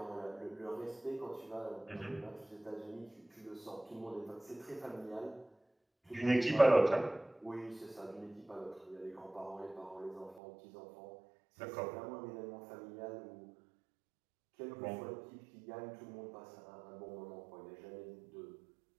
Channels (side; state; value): left; drops out; at 10.4 s